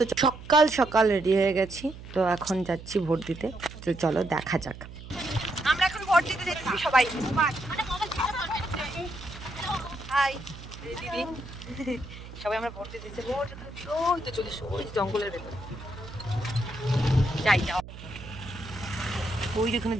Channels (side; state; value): right; noise; hum, 14 dB below the sound